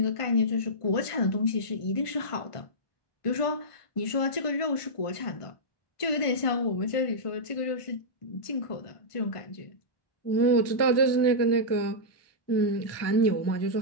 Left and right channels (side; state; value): right; late; 1.5 ms